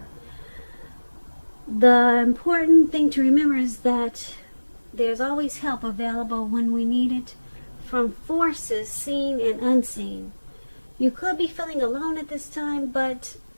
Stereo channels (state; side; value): inverted; both; correlation -1.00